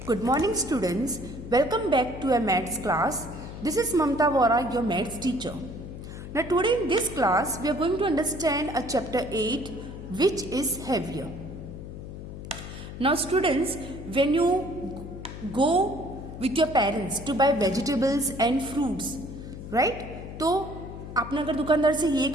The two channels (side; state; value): left; noise; hum, 11 dB below the sound